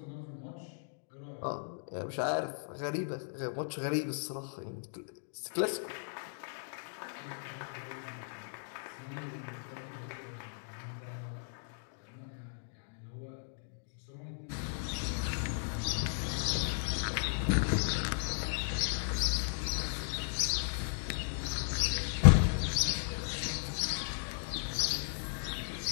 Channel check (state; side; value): silent; right; digital silence